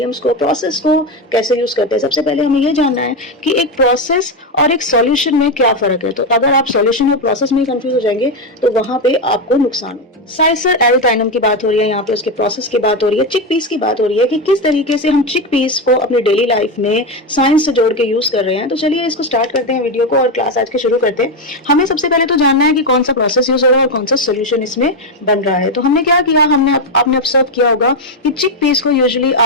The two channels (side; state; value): both; normal; correlation 0.09